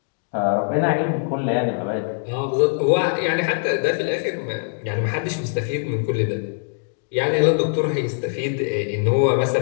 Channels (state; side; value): silent; right; digital silence